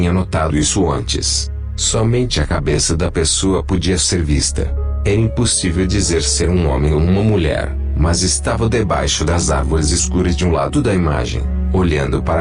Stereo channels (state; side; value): identical; both; correlation 1.00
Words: notado isso antes. Somente a cabeça da pessoa podia ser vista. Era impossível dizer ser um homem ou uma mulher, mas estava debaixo das árvores escuras de um lado da imagem, olhando